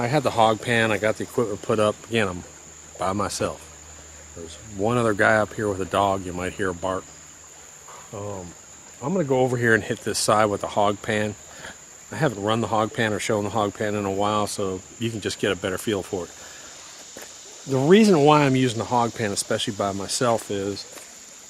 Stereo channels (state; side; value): identical; both; correlation 1.00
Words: had the hog pan, I got the equipment put up. Again, I'm by myself. There's one other guy up here with a dog. You might hear a bark. I'm going to go over here and hit this side with the hog pan. I haven't run the hog pan or shown the hog pan in a while, so you can just get a better feel for it. The reason why I'm using the hog pan, especially by myself, is